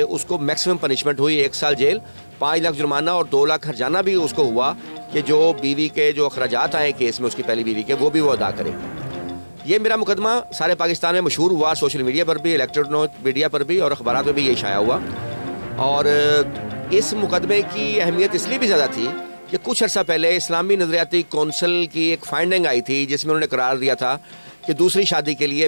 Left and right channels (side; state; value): both; inverted; correlation -1.00